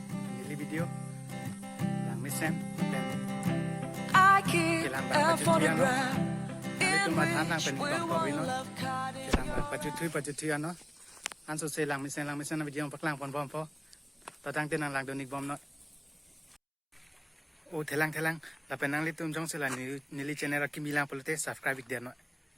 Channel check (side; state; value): both; identical; correlation 1.00